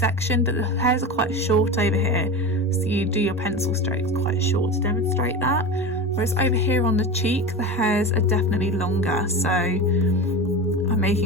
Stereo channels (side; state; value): both; normal; correlation 0.26